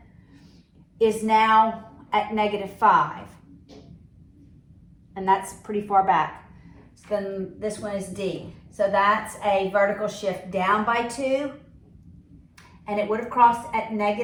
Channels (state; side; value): identical; both; correlation 1.00